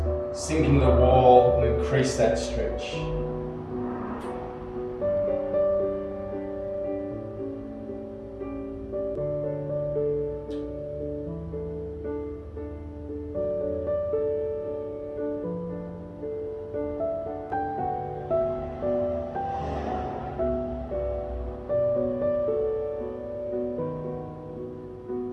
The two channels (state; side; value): identical; both; correlation 1.00